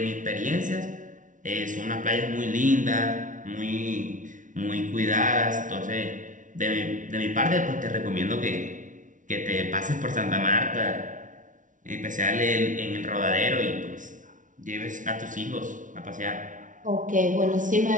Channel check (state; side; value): late; left; 0.37 ms